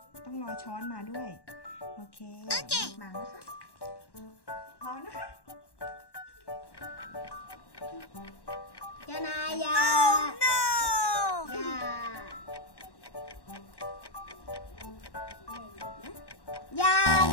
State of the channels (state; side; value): late; right; 1.1 ms